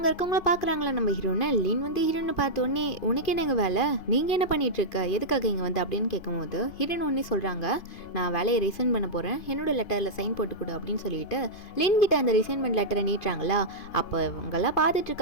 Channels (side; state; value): right; late; 2.5 ms